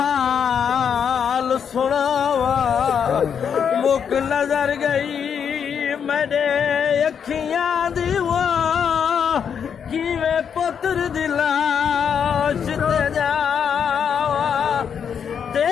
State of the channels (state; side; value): quieter; right; 7.5 dB